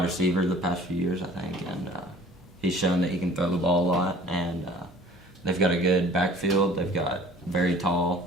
receiver the past few years, I think, and he's shown that he can throw the ball a lot. And they've got a good backfield. They've got very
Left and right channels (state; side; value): normal; both; correlation 0.49